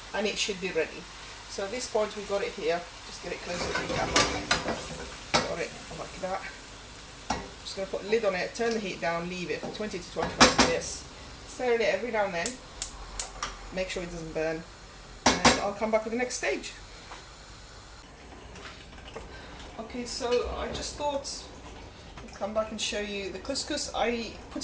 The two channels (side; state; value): both; identical; correlation 1.00